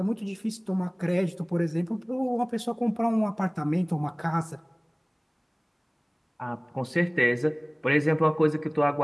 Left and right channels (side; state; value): both; identical; correlation 1.00